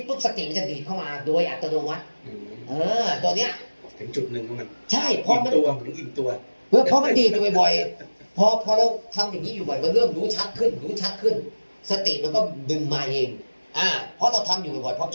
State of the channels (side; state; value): both; inverted; correlation -1.00